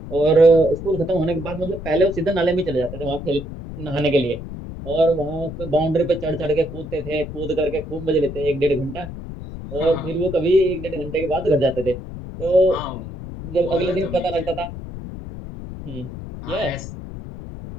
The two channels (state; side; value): noise; left; rumble, 10 dB below the sound